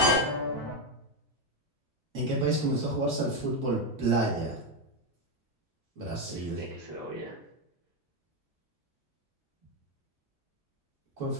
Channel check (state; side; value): normal; both; correlation 0.07